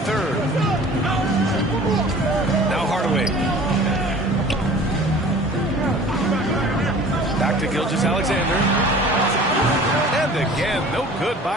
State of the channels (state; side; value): normal; both; correlation 0.45